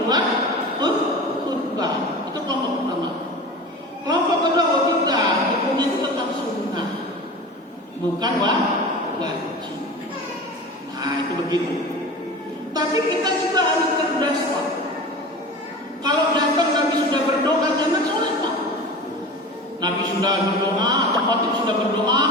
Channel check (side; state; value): both; normal; correlation 0.33